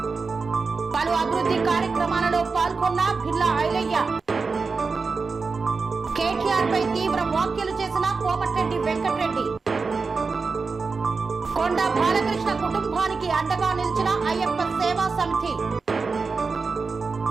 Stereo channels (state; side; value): quieter; left; 4.5 dB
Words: పలు అభివృద్ధి కార్యక్రమాలలో పాల్గొన్న బిర్లా ఐలయ్య. కేటీఆర్ పై తీవ్ర వ్యాఖ్యలు చేసిన కోమటిరెడ్డి వెంకటరెడ్డి. కొండ బాలకృష్ణ కుటుంబానికి అండగా నిలిచిన అయ్యప్ప సేవా సమితి.